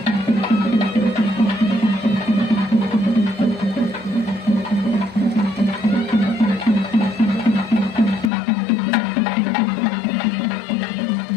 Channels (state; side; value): drops out; right; at 8.3 s